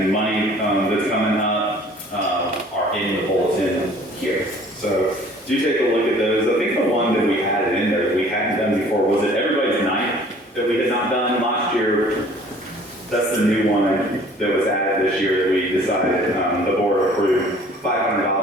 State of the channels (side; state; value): both; normal; correlation 0.52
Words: money that's coming up are in the bulletin here. So do take a look at those. I think the one that we had in there that we hadn't done before was it everybody's night that we had not done last year. That's the new one that was added this year that we decided the board approved